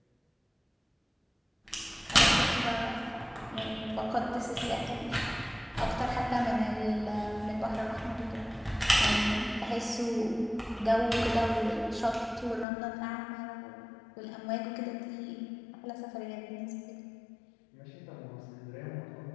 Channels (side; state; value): right; drops out; at 12.7 s